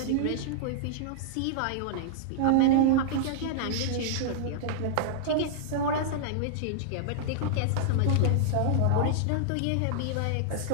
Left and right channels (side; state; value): both; different; correlation -0.01